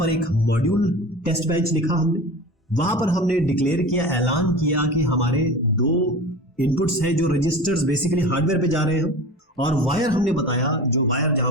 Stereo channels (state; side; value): normal; both; correlation 0.34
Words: एक मॉड्यूल टेस्ट बेंच लिखा हमने, वहां पर हमने डिक्लेयर किया, ऐलान किया कि हमारे दो इनपुट्स हैं जो रजिस्टर्स बेसिकली हार्डवेयर पे जा रहे हैं, और वायर हमने बताया, जो वायर जहां